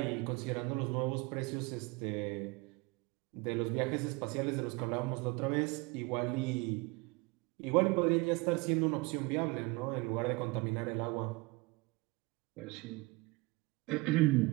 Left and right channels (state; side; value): quieter; left; 24.9 dB